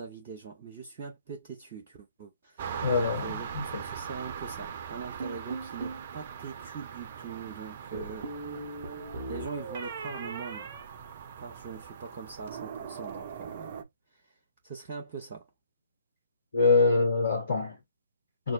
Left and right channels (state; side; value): inverted; both; correlation -0.59